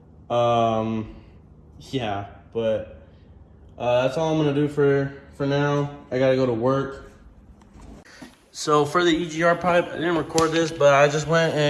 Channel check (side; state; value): both; identical; correlation 1.00